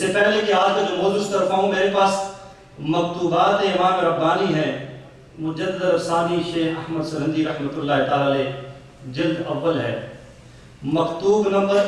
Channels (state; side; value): identical; both; correlation 1.00